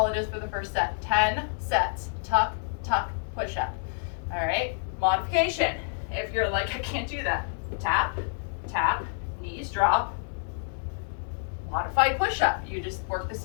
it is for the first set. 10 sets, tuck, tuck, push up. All right, modification. If you're like, I can't do that, tap, tap, knees drop, modified push-up. You just work the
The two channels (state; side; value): silent; right; digital silence